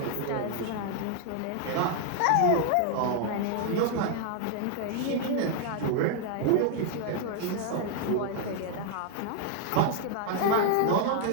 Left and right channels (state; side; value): different; both; correlation 0.00